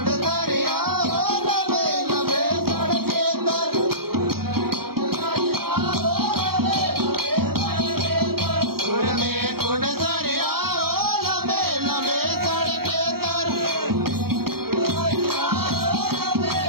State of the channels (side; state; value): left; late; 0.94 ms